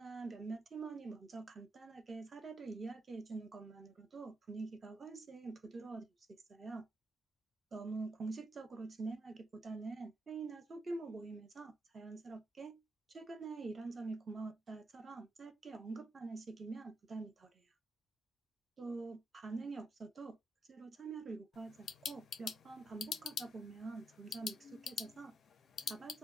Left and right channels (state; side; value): normal; both; correlation 0.81